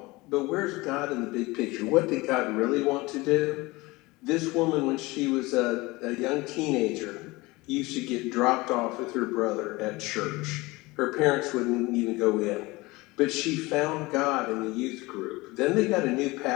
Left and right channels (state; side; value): quieter; right; 22.2 dB